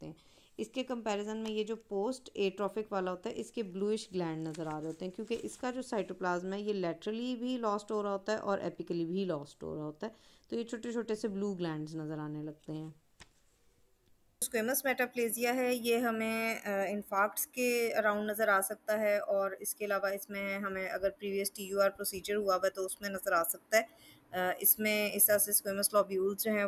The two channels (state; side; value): identical; both; correlation 1.00